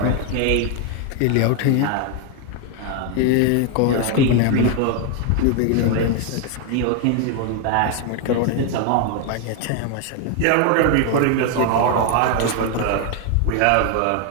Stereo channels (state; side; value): different; both; correlation 0.01